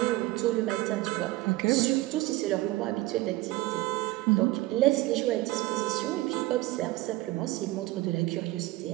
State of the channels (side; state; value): left; quieter; 18.7 dB